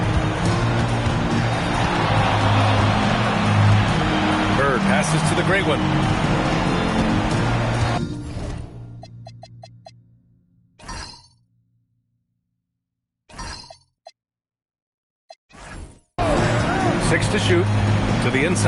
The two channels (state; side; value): identical; both; correlation 1.00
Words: Bird passes to the gray one. Six to shoot. To the